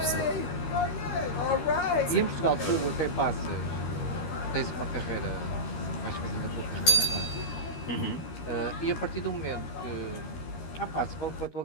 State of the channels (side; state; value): right; late; 13 ms